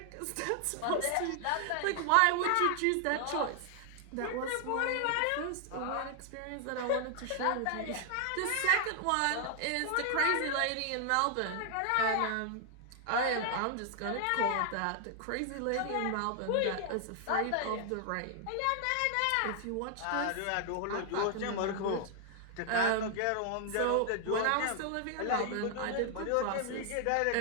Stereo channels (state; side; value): different; both; correlation 0.00